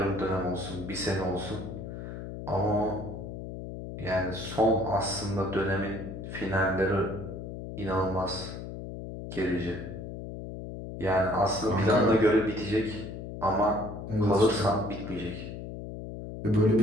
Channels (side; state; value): left; noise; hum, 9 dB below the sound